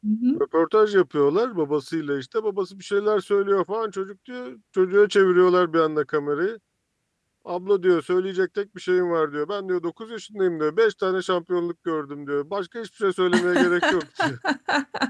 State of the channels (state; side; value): identical; both; correlation 1.00